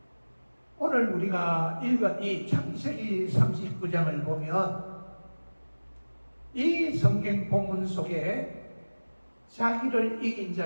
오늘 우리가 읽은 이 창세기 39장을 보면 이 성경 본문 속에 자기를 이긴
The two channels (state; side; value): inverted; both; correlation -1.00